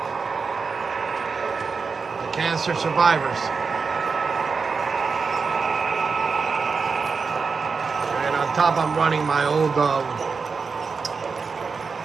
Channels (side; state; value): left; quieter; 5.0 dB